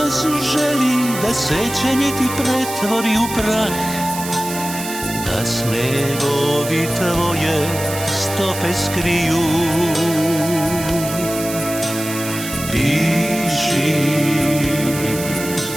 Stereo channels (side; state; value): right; noise; hiss, 9 dB below the sound